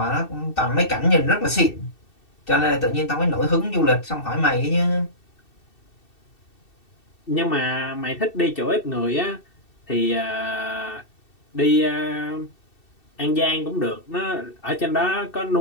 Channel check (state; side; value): late; right; 2.7 ms